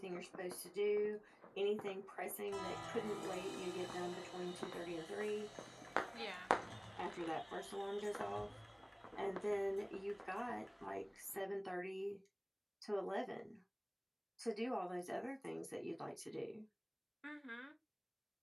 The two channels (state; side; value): identical; both; correlation 1.00